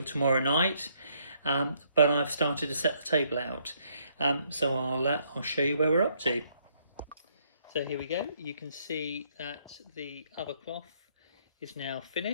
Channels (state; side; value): inverted; both; correlation -0.69